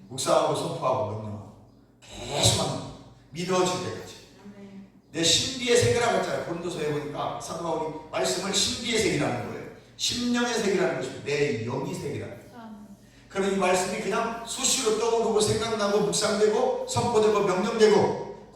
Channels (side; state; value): both; identical; correlation 1.00